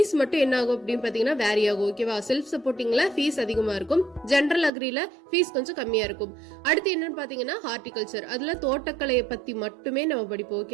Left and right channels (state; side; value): drops out; left; at 4.7 s